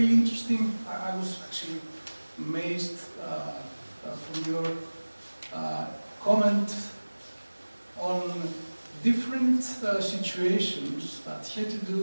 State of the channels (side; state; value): both; inverted; correlation -1.00